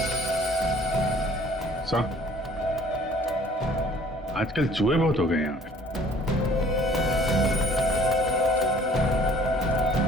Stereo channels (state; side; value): normal; both; correlation 0.55